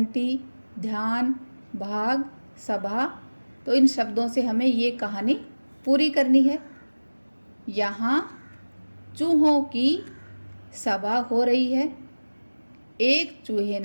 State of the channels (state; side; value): inverted; both; correlation -1.00